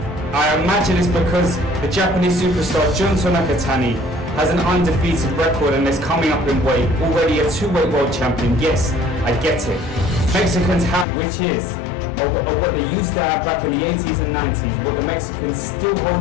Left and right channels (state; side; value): drops out; right; at 11.1 s